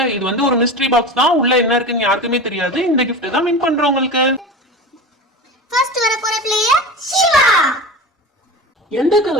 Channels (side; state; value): both; normal; correlation 0.30